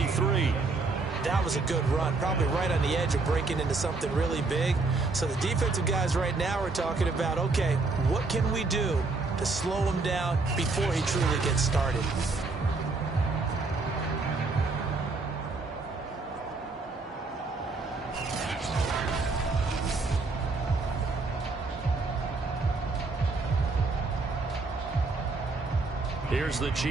That was a good run, probably right on the edge of breaking into something really big. So the defensive guys right now are talking about, okay, what can we do to slow him down before he truly gets started? Here's the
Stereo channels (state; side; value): quieter; left; 3.7 dB